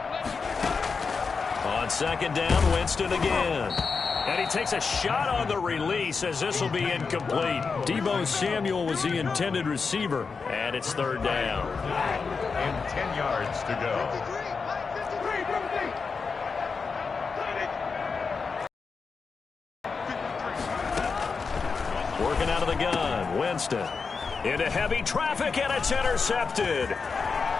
On 2nd down, Winston again. And he takes a shot on the release as this will be incomplete. Deebo Samuel was the intended receiver. And it's 3rd down. And 10 yards to go. Working out of the gun, Winston. Into heavy traffic, and it's intercepted.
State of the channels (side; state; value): right; quieter; 5.0 dB